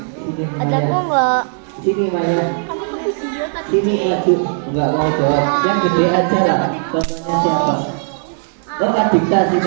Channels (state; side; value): silent; left; digital silence